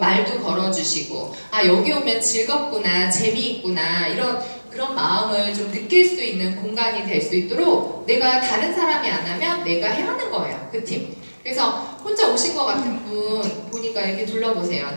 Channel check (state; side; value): inverted; both; correlation -1.00